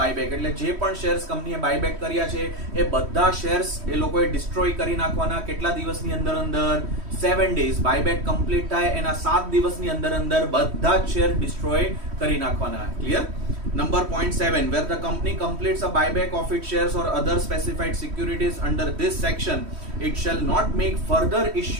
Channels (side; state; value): left; late; 3.1 ms